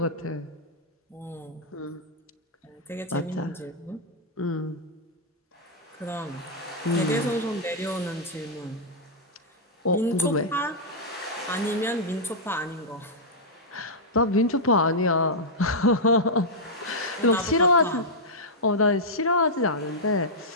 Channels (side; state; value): both; normal; correlation -0.08